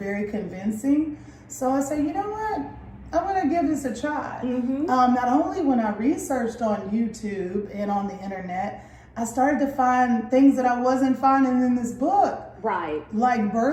convincing. So I said, you know what? I'm going to give this a try. Not only when I researched on YouTube and on the internet, I started to find things that I wasn't finding in this book. Right. Like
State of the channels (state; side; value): identical; both; correlation 1.00